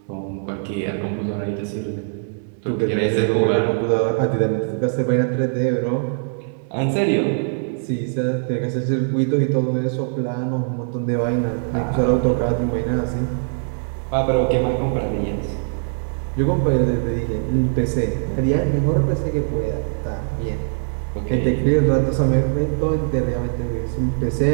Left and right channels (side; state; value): left; silent; digital silence